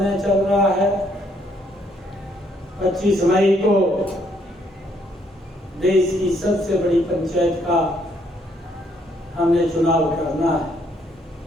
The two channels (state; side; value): normal; both; correlation 0.70